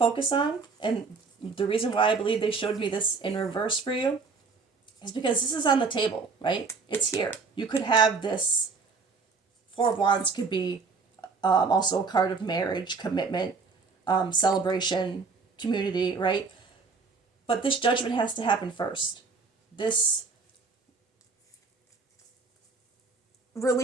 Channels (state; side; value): quieter; left; 4.6 dB